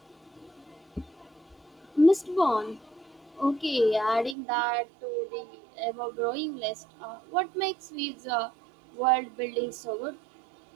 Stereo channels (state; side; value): drops out; left; at 4.4 s